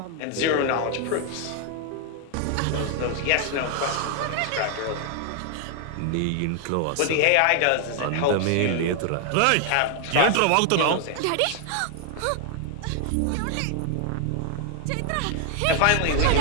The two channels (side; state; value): both; different; correlation 0.00